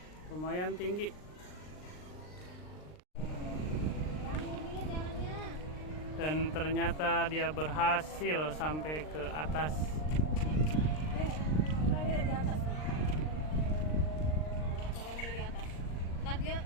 Lumayan tinggi. Dan ternyata dia berhasil sampai ke atas. Di atas nih. Caranya dari atas. Ntar dia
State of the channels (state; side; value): late; right; 39 ms